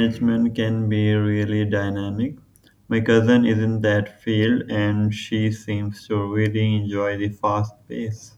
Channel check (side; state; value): both; identical; correlation 1.00